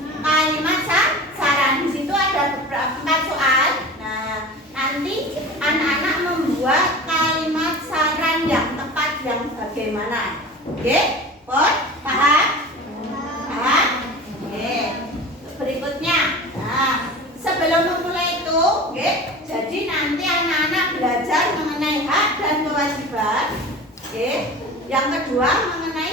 kalimat saran. Di situ ada beberapa 4 soal. Nah, nanti anak-anak membuat kalimat saran yang tepat yang bagaimana. Oke? Paham? Paham? Oke. Berikutnya. Nah, sebelum memulai itu, oke, jadi nanti anak-anak belajar mengenai hak dan kewajiban. Oke. Yang kedua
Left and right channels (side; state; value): both; normal; correlation 0.36